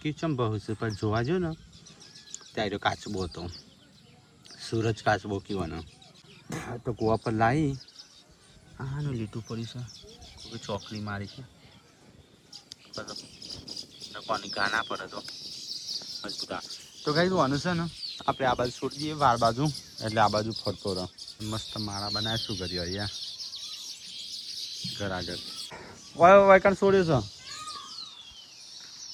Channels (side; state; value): both; identical; correlation 1.00